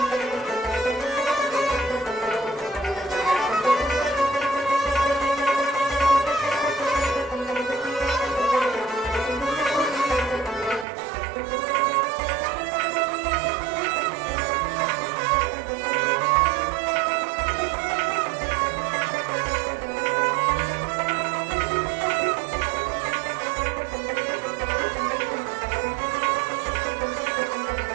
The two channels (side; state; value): left; drops out; at 10.9 s